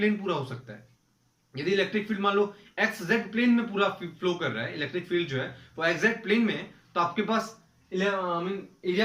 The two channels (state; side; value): identical; both; correlation 1.00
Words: पूरा हो सकता है। यदि इलेक्ट्रिक फील्ड मान लो एक्स जेड प्लेन में पूरा फ्लो कर रहा है, इलेक्ट्रिक फील्ड जो है वो एक्स जेड प्लेन में है, तो आपके पास एरिया